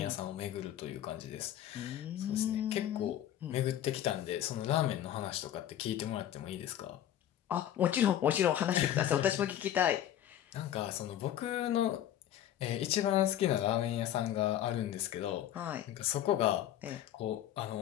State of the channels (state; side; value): quieter; right; 11.4 dB